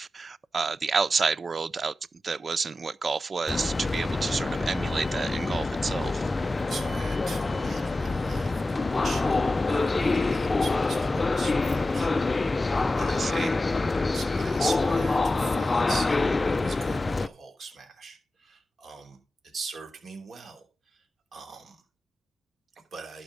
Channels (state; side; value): normal; both; correlation 0.93